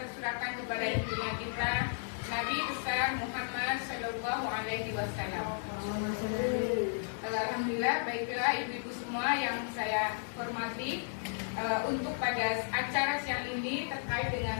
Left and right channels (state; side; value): silent; right; digital silence